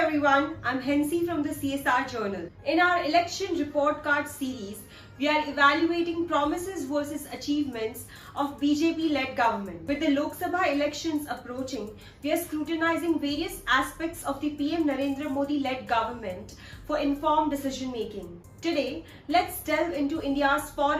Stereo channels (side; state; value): both; identical; correlation 1.00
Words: I'm Hensi from the CSR Journal. In our election report card series, we are evaluating promises versus achievements of BJP-led government. With the Lok Sabha elections approaching, we are scrutinizing various aspects of the PM Narendra Modi-led government for informed decision-making. Today, let's delve into India's